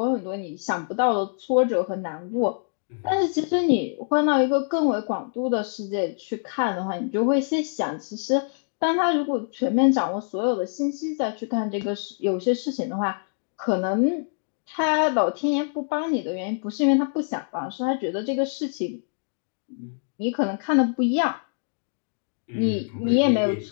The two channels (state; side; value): silent; right; digital silence